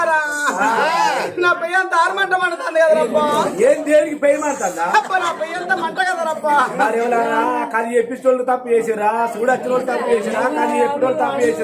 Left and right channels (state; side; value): identical; both; correlation 1.00